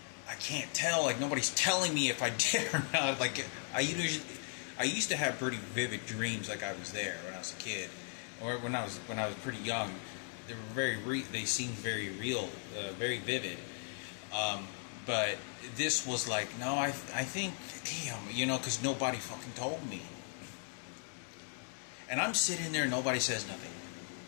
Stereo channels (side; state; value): right; silent; 53 dB below the other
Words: I can't tell, like, nobody's telling me if I did or not. Like, I used to have pretty vivid dreams, like I was there when I was a kid, or when I was pretty young. They seemed very real, very vivid. But this was like, no, I think, damn, you know, because nobody fucking told me. And I'm sitting there, nobody says nothing.